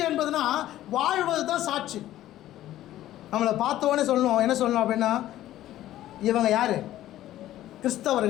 என்பதுனா வாழ்வது தான் சாட்சி. நம்மளை பார்த்தோன்னே சொல்லணும். என்ன சொல்லணும் அப்படின்னா, இவங்க யார்?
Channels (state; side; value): quieter; right; 13.8 dB